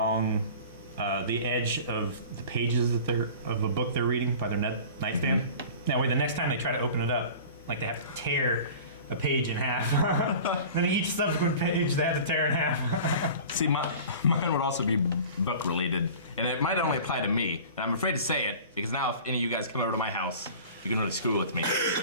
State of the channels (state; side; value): inverted; both; correlation -0.40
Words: the edge of the pages of a book they're reading by their nightstand. That way, the next time they try to open it up, like they have to tear a page in half. Then each subsequent page they have to tear in half. See, mine would also be book related, and it might only apply to me. And I'm afraid to say it because now, if any of you guys come over to my house, you can really screw with me.